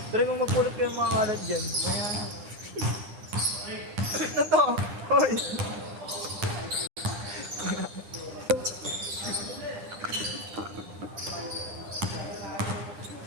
Pre, kung magpulot kayo mga kalat dyan, maya na. Ano to? Hoy!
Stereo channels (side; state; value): left; late; 9.8 ms